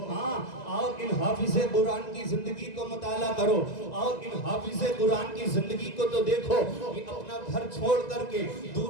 ہاں آؤ ان حافظ قرآن کی زندگی کو مطالعہ کرو، آؤ ان حافظ قرآن کی زندگی کو تو دیکھو، یہ اپنا گھر چھوڑ کر کے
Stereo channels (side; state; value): right; late; 1.9 ms